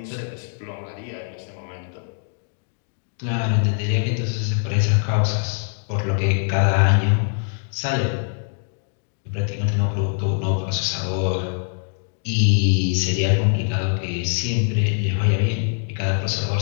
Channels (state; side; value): silent; right; digital silence